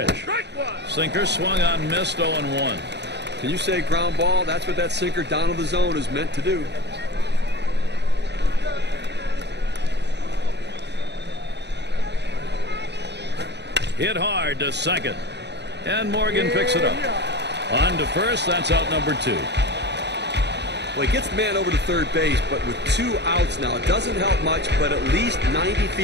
Sinker swung on, missed, 0-1. Can you say ground ball? That's what that sinker down to the zone is meant to do. Hit hard to second. And Morgan picks it up. On to first, that's out number 2. Well, he gets the man over to third base, but with 2 outs now, it doesn't help much, but at least 90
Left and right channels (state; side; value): late; left; 0.50 ms